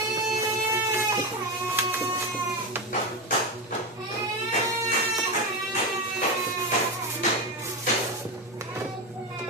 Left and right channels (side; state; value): both; normal; correlation 0.15